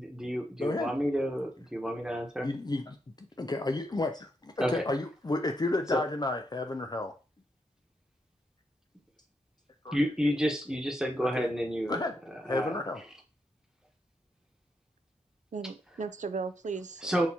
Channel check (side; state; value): both; normal; correlation 0.81